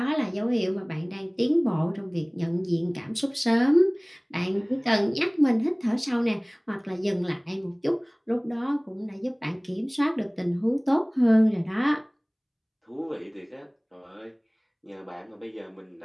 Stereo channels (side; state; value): both; identical; correlation 1.00